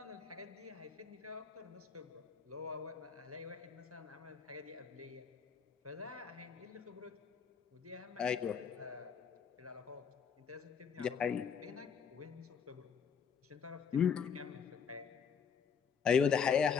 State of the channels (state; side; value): quieter; right; 6.8 dB